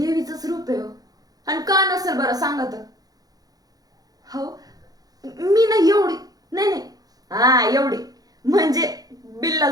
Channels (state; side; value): late; left; 0.18 ms